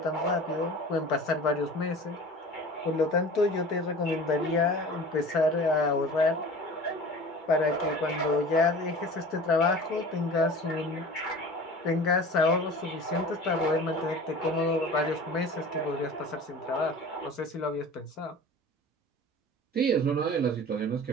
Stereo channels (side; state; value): both; normal; correlation 0.39